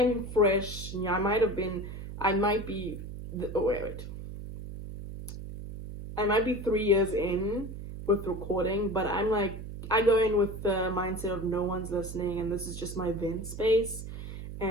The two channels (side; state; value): right; noise; hum, 9 dB below the sound